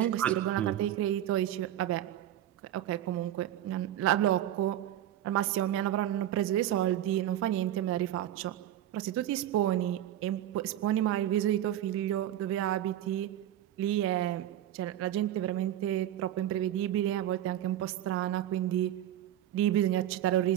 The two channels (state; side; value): quieter; left; 12.2 dB